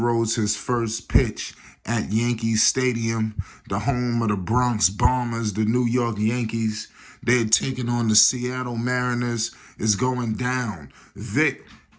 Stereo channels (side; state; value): both; identical; correlation 1.00